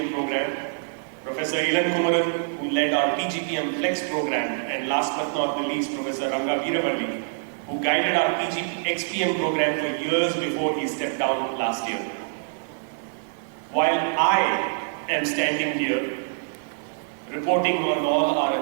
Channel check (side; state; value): left; silent; 57 dB below the other